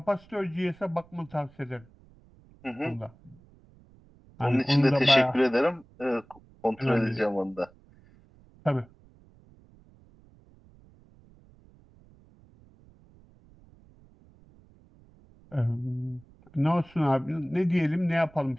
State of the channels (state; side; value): noise; right; rumble, 27 dB below the sound